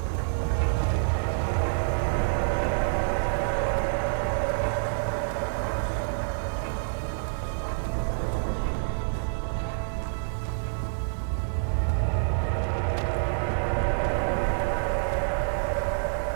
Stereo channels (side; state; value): left; silent; 60 dB below the other